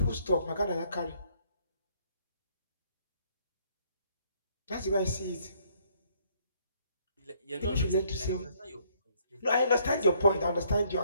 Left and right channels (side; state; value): both; inverted; correlation -0.66